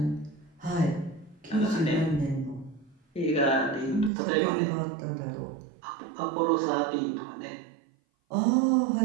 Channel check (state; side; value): drops out; left; at 4.1 s